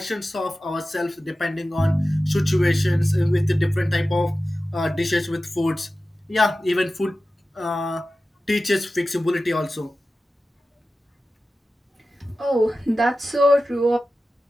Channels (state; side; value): normal; both; correlation 0.94